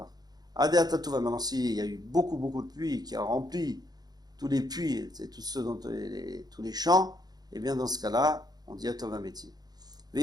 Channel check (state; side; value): late; left; 0.19 ms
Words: Adeata Tuva, maintenant s'il y a eu beaucoup de pluie qui a rempli tous les puits, c'est tous ceux dans tous les champs, et bien dans ce cas-là, on dit Atov Ve'ametiv.